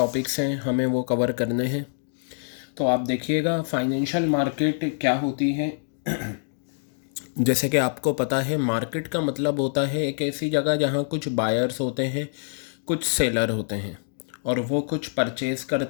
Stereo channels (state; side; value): silent; right; digital silence